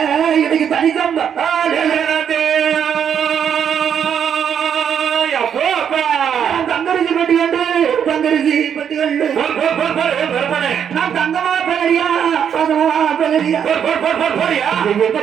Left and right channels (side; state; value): left; quieter; 8.2 dB